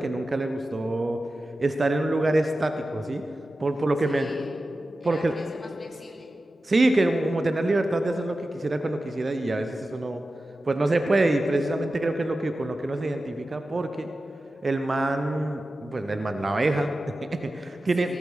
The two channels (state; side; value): normal; both; correlation 0.94